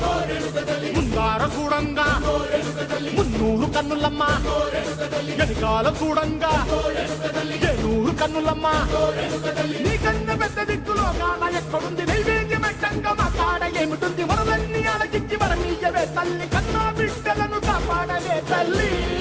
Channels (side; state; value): both; identical; correlation 1.00